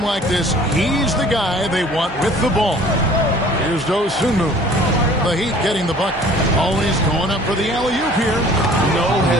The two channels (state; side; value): normal; both; correlation 0.51